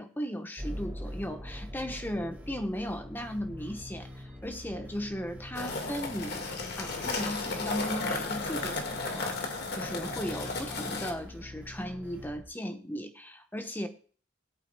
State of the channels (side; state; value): both; normal; correlation 0.50